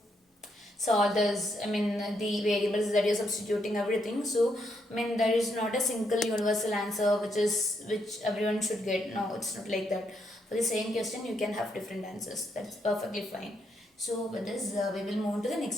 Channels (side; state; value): both; normal; correlation 0.77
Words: solve this. I mean, the variables that you're substituting, everything. So I mean, there is not a single universal answer which everyone should get. No, it's not like that. For the same question, you can have different answers. That's perfectly fine. So with this, we will move to the